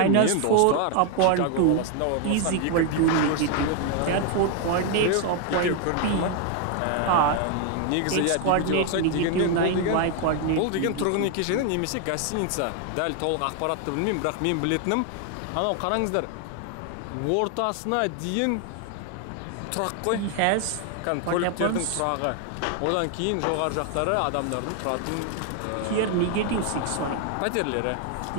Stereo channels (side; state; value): both; different; correlation 0.01